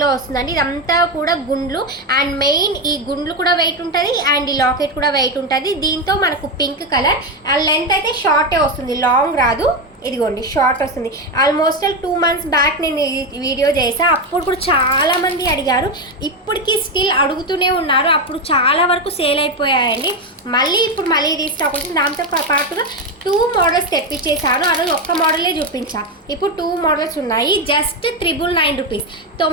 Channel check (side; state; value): both; normal; correlation 0.11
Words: వస్తుందండి. ఇదంతా కూడా గుండ్లు, అండ్ మెయిన్ ఈ గుండ్లు కూడా వెయిట్ ఉంటుంది అండ్ ఈ లాకెట్ కూడా వెయిట్ ఉంటుంది. దీంతో మనకు పింక్ కలర్, అండ్ లెంత్ అయితే షార్టే వస్తుంది, లాంగ్ రాదు. ఇదిగోండి షార్ట్ వస్తుంది. ఆల్మోస్ట్ 2 months బ్యాక్ నేను ఈ వీడియో చేసా. అప్పుడు కూడా చాలామంది అడిగారు, ఇప్పటికీ స్టిల్ అడుగుతూనే ఉన్నారు. అప్పుడు చాలా వరకు సేల్ అయిపోయాయండి. ఇప్పుడు మళ్ళీ రీస్టాక్ వచ్చింది. దాంతో పాటుగా 2 మోడల్స్ తెప్పించేసాను. ఆ రోజు ఒక్క మోడలే చూపించా, ఇప్పుడు 2 మోడల్స్ ఉన్నాయి. జస్ట్ 999 రూపీస్,